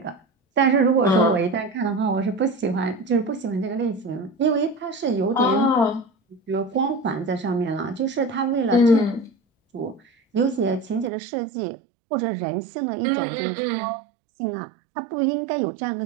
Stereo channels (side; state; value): left; drops out; at 11.1 s